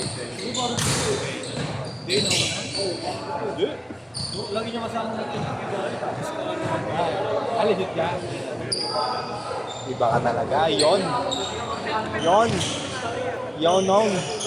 Lagi niya kasama natin. Aligit ka. Iba ka talaga. Yon. Nong.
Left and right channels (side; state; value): both; identical; correlation 1.00